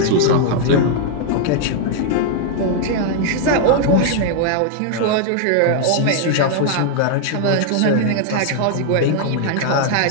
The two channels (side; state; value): both; different; correlation -0.01